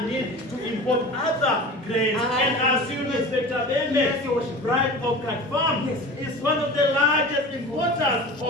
need to import other grains. And as you know, Inspector Bembe, Bright Orchard Farm is one of the largest importers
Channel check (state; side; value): normal; both; correlation 0.35